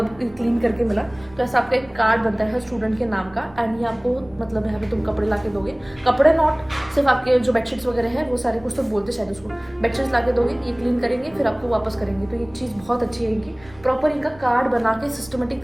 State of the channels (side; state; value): right; noise; rumble, 24 dB below the sound